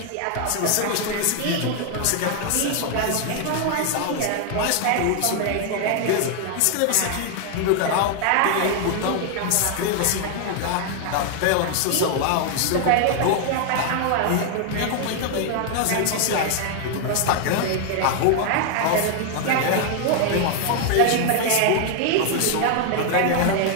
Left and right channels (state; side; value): different; both; correlation 0.00